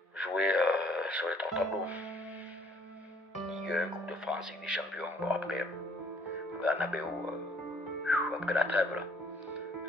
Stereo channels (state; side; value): normal; both; correlation 0.61